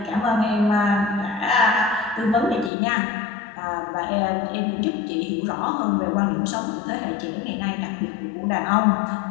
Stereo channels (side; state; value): right; drops out; at 2.7 s